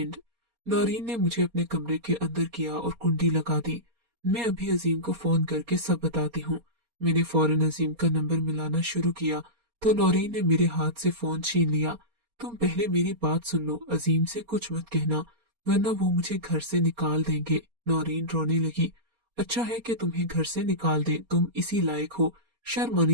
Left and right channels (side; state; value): left; late; 4.3 ms